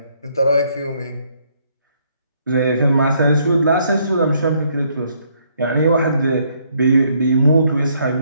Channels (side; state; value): both; inverted; correlation -0.70